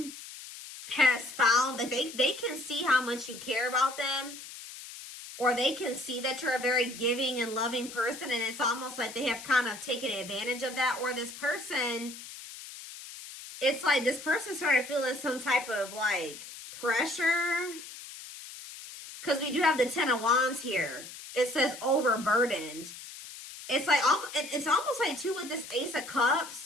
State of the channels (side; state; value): left; noise; hiss, 13 dB below the sound